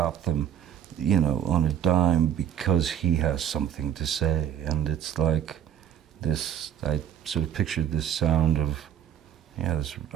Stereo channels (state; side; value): quieter; left; 10.0 dB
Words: them, you know, on a dime because he has something to say. And it's like this, I sort of pictured this sound of, yeah, this